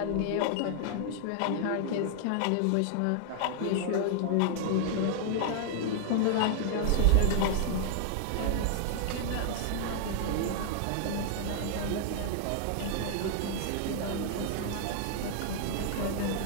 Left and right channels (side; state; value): both; different; correlation -0.01